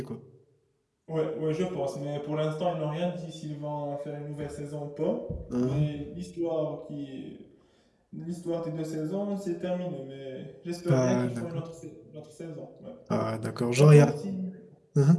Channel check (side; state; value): both; identical; correlation 1.00